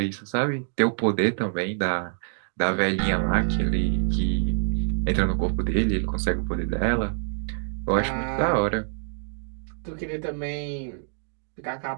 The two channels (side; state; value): left; silent; digital silence